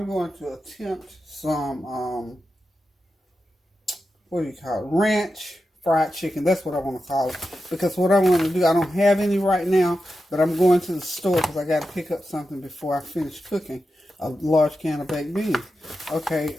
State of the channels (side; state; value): both; normal; correlation 0.90